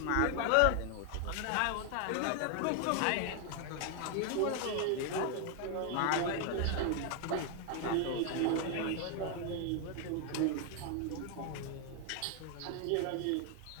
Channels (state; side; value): different; both; correlation 0.00